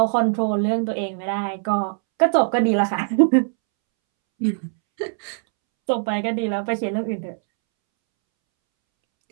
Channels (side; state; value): left; silent; 65 dB below the other